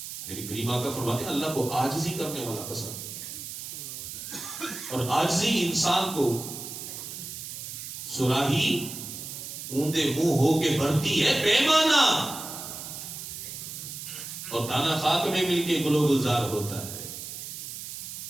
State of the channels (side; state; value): right; noise; hiss, 9 dB below the sound